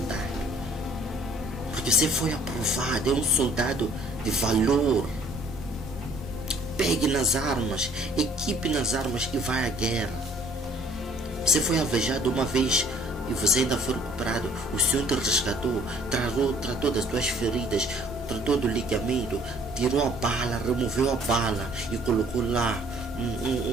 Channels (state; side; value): normal; both; correlation 0.58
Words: Porque você foi aprovado, é um soldado de valor. Pegue nas armas, equipe nas armas e vai à guerra. Você foi alvejado uma vez e você ainda foi recuperado. O Senhor te resgatou, tratou das tuas feridas, tratou do ligamento, tirou a bala, removeu a bala e colocou lá